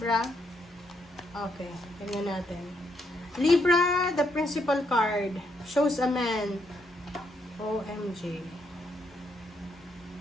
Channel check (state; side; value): normal; both; correlation 0.76